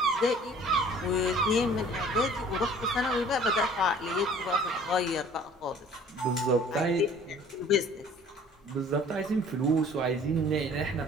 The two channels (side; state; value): both; normal; correlation 0.51